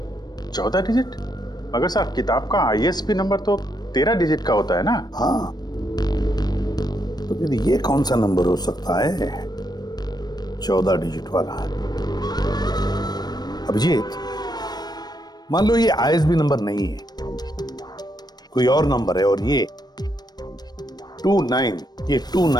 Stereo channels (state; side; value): late; right; 0.19 ms